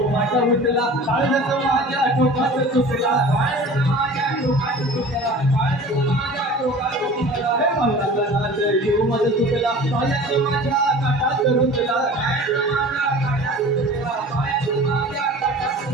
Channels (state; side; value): normal; both; correlation 0.41